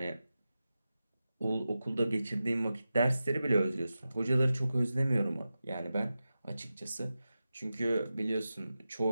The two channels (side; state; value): both; inverted; correlation -0.92